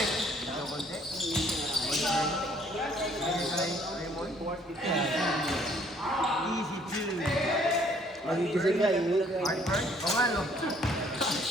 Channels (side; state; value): both; normal; correlation 0.61